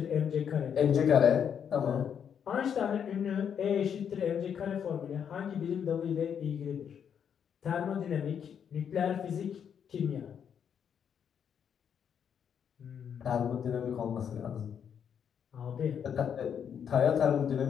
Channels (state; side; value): quieter; right; 8.0 dB